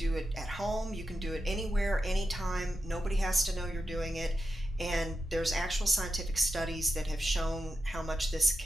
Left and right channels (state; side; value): normal; both; correlation 0.90